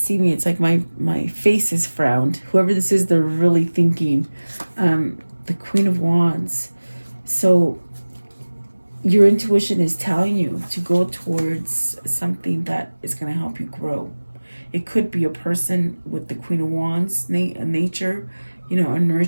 me, it's like my face is frowned. Whoever this is, they're really thinking. The Queen of Wands. So your intuition is telling you to go towards something that is going to help you grow. It could be a person with the Queen of Wands nature, you know, a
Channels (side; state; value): both; inverted; correlation -1.00